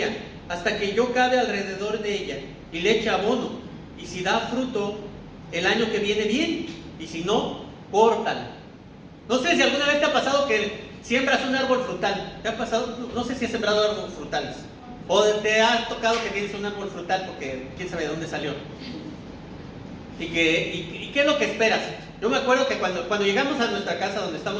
hasta que yo cabe alrededor de ella y le eche abono. Y si da fruto el año que viene, bien, y si no, córtala. No sé si alguna vez te ha pasado que siembras un árbol frutal. ¿Te ha pasado? No sé si has sembrado árboles frutales. O te ha tocado que tienes un árbol frutal porque quién sabe de dónde salió. ¿Y qué es lo que esperas? Yo me acuerdo que cuando llegamos a nuestra casa donde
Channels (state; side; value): identical; both; correlation 1.00